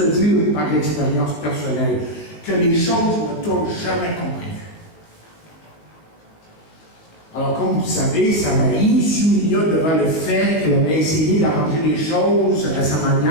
dire par l'expérience personnelle, que les choses ne tournent jamais comme prévu. Alors, comme vous le savez, Samarie s'humilia devant le fait qu'elle avait essayé d'arranger les choses à sa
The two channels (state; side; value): late; right; 18 ms